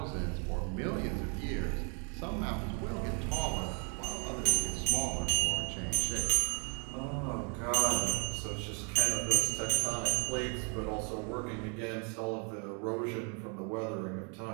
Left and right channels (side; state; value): left; quieter; 37.3 dB